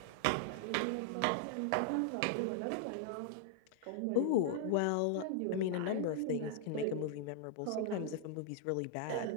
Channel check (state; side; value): different; both; correlation 0.00